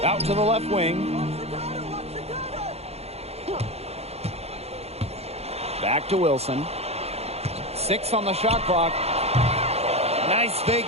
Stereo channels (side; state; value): left; late; 0.30 ms